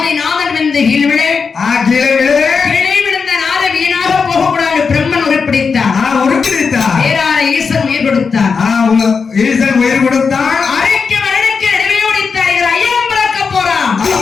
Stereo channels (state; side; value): quieter; right; 5.4 dB